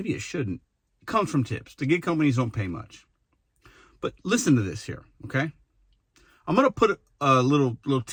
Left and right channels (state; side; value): identical; both; correlation 1.00